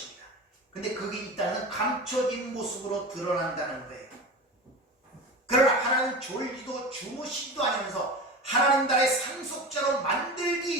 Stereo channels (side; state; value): both; normal; correlation 0.29